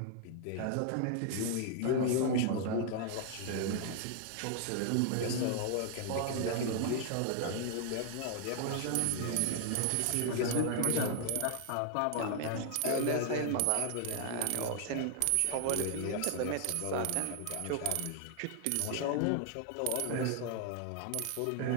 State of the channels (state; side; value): different; both; correlation 0.00